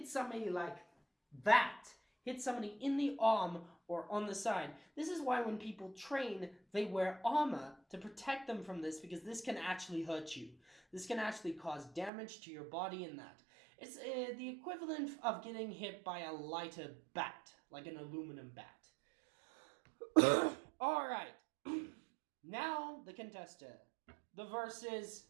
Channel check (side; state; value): left; drops out; at 12.1 s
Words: somebody like that, hit somebody in the arm or on the side, this is why when people train, they wear armor to protect them from this, because this can actually hurt you. This can actually cause damage to your body in that. It's the equivalent of getting hit by a lighter bat, like an aluminum bat. Alright, now the contester, the versus